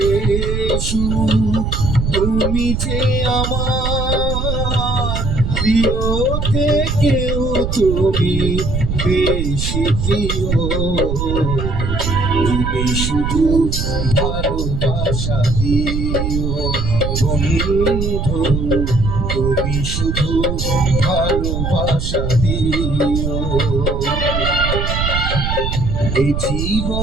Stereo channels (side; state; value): right; noise; rumble, 1 dB below the sound